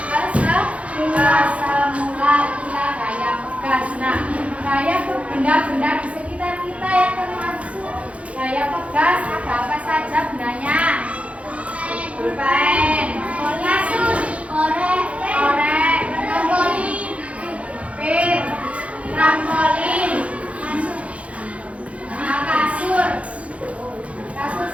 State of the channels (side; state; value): left; late; 0.064 ms